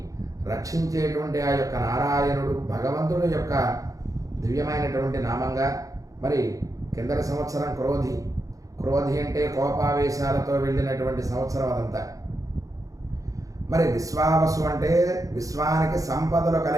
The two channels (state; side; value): late; left; 0.17 ms